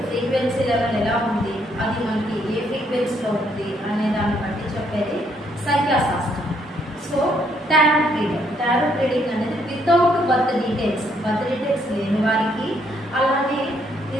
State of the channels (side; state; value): both; normal; correlation 0.71